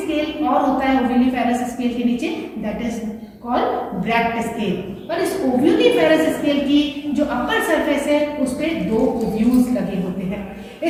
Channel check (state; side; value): identical; both; correlation 1.00